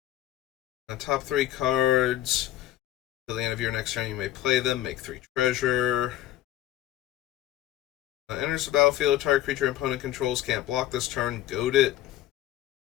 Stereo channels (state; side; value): quieter; right; 14.0 dB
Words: Top 3 cards. Till the end of your next turn, you may play them. Make 3 treasure. Enters the battlefield. Target creature opponent controls can't block this turn. Goad it.